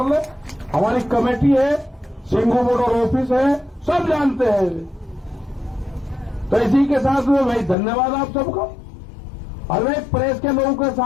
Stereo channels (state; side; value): drops out; right; at 7.8 s